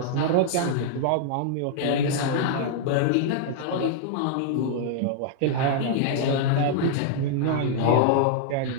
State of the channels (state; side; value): different; both; correlation -0.01